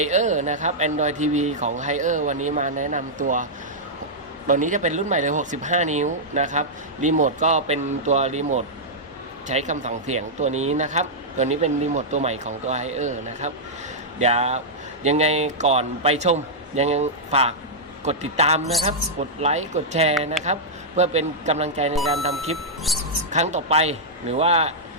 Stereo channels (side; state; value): both; normal; correlation -0.09